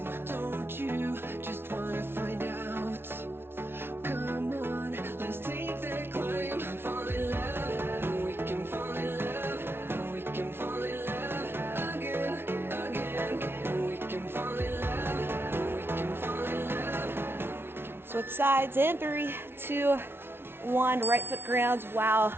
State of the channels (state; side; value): late; left; 0.11 ms